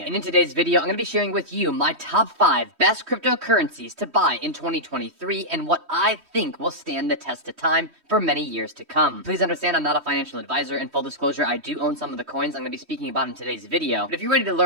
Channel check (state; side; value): late; left; 3.1 ms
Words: And in today's video, I'm going to be sharing with you my top 5 best cryptocurrencies to buy in 2023 and what I think will stand the test of time for many years to come. Please understand I'm not a financial advisor, and full disclosure, I do own some of the coins I'm going to be speaking about in today's video. But if you're ready to